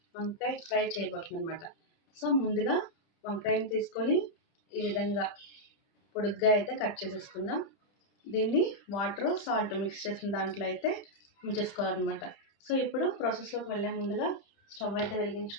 వంకాయ ఫ్రై చేయబోతున్నాం అనమాట. సో ముందుగా వంకాయని తీసుకొని ఈ విధంగా పొడుగ్గా అయితే కట్ చేసేసుకుందాం. దీన్ని వాటర్ సాల్ట్ మిక్స్ చేసిన దాంట్లో అయితే ఉంచేసుకోవాలన్నమాట. సో ఇప్పుడు ప్రాసెస్లోకి వెళ్ళే ముందుగా స్టవ్ అయితే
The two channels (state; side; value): late; right; 30 ms